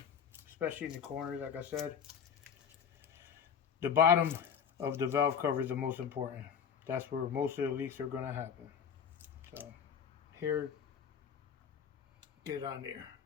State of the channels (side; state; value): right; quieter; 7.5 dB